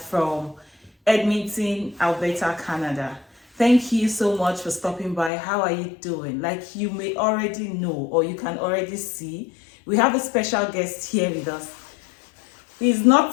Edmonton, Alberta, Canada. Thank you so much for stopping by. How are you doing? Like you may already know or you can already see, we have a special guest here with us. He's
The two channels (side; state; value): right; drops out; at 5.3 s